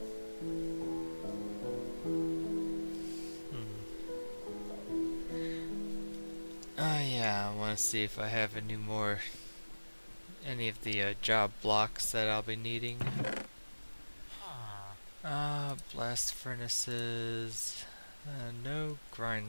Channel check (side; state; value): both; inverted; correlation -1.00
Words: Oh yeah, I want to see if I have any of the job blocks that I'll be needing. Blast furnaces, no